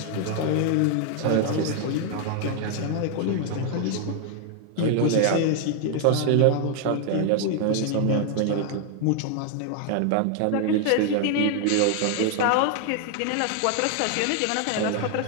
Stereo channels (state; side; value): different; both; correlation 0.00